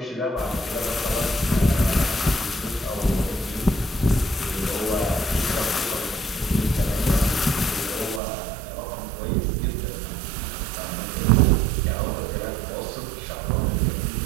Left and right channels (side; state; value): left; drops out; at 8.2 s